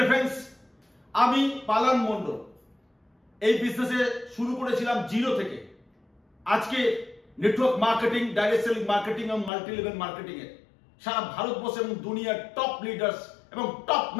ফ্রেন্ডস, আমি পালান মন্ডল এই বিজনেসে শুরু করেছিলাম জিরো থেকে। আজকে network marketing, direct selling marketing এবং মাল্টি লেভেল মার্কেটিং এর সারা ভারতবর্ষ এবং দুনিয়ার টপ লিডার্স এবং টপ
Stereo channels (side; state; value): right; drops out; at 9.5 s